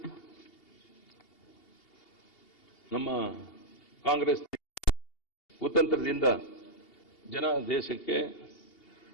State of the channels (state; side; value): late; right; 2.8 ms